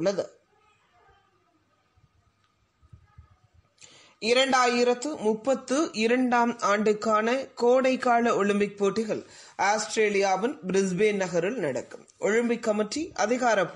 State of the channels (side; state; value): both; identical; correlation 1.00